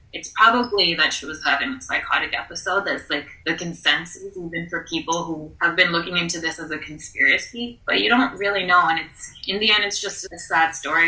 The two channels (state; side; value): identical; both; correlation 1.00